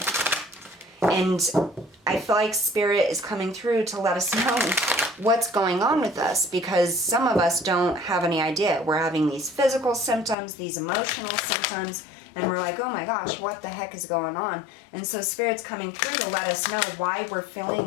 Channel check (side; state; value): right; drops out; at 10.4 s